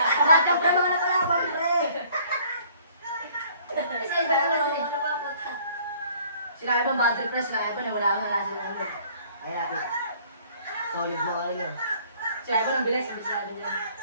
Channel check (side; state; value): both; inverted; correlation -0.57